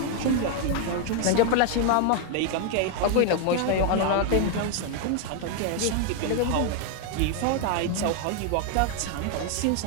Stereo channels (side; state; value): both; different; correlation 0.00